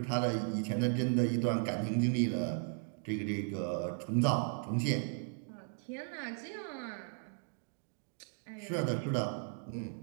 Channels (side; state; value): left; silent; 54 dB below the other